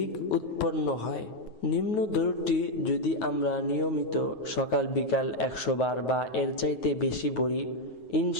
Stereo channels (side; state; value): right; late; 9.3 ms